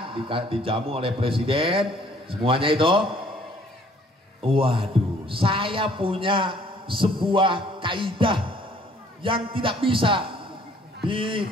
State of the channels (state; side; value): normal; both; correlation 0.59